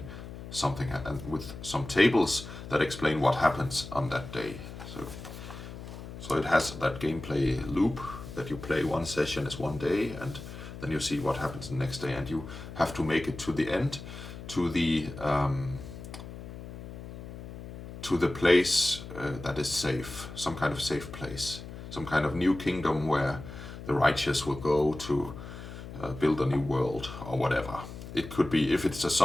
something, and with some tables that explain what happens on that day. So it has that gameplay loop that you play one session is one day, and then you see what happens the next day, and you have to make it to the end, to the place that is safe, some kind of safe place, some kind of new kingdom where the righteous will go to build a new world or whatever. It could be, if it's a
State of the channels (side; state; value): left; noise; hum, 12 dB below the sound